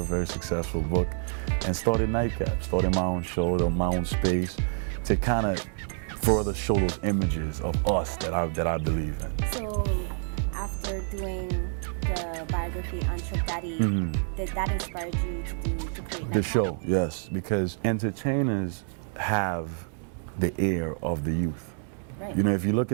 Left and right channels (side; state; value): left; silent; 59 dB below the other